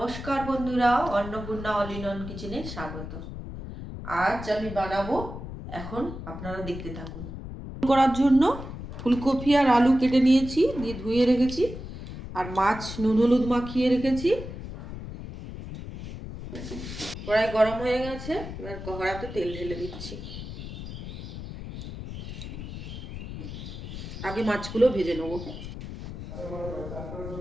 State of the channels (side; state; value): left; noise; rumble, 9 dB below the sound